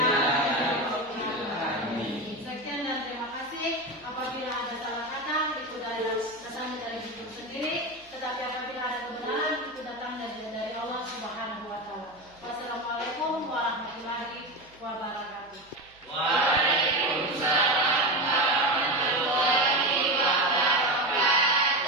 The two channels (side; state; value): right; noise; hum, 30 dB below the sound